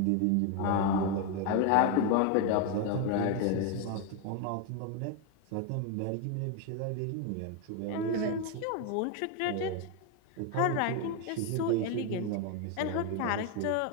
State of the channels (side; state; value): both; different; correlation 0.01